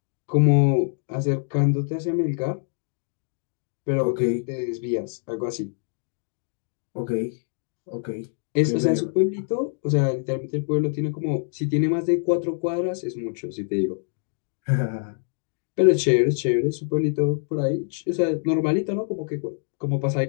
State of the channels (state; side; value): silent; right; digital silence